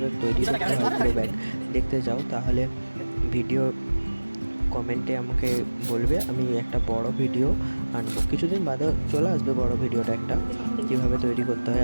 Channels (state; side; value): inverted; both; correlation -1.00